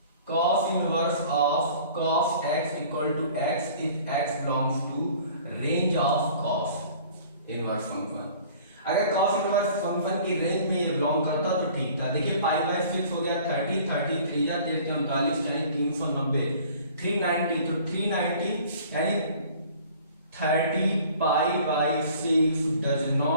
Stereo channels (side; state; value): both; inverted; correlation -0.49